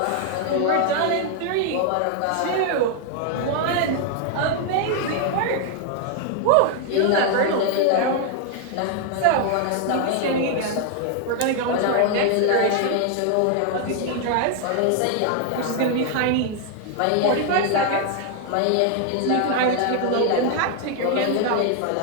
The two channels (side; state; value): both; different; correlation 0.00